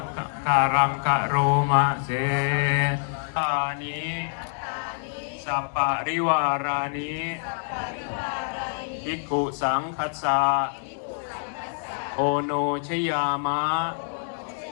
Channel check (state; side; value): silent; right; digital silence